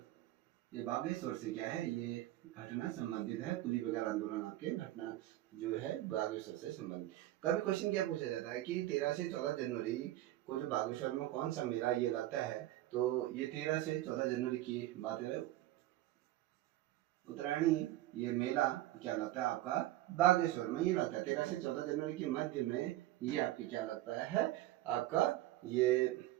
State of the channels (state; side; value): quieter; left; 15.3 dB